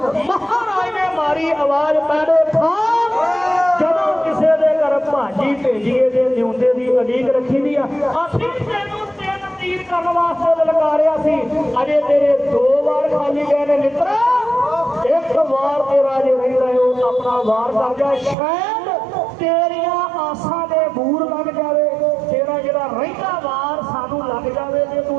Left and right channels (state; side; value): drops out; left; at 18.4 s